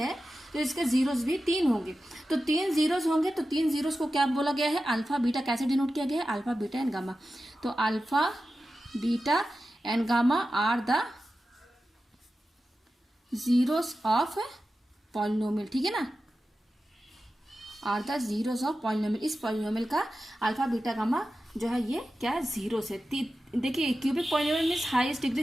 तो इसके जीरोस भी 3 होंगे। तो 3 जीरोस होंगे, तो 3 जीरोस को क्या बोला गया है, अल्फा बीटा कैसे डिनोट किया गया है, अल्फा बीटा एंड गामा। तो alpha beta and gamma are the zeros of polynomial, ठीक है ना, are the zeros of polynomial. इस पॉलिनोमियल का अल्फा बीटा गामा जो है ये क्या है, जीरो से। देखिए cubic polynomial means highest degree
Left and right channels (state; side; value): normal; both; correlation 0.93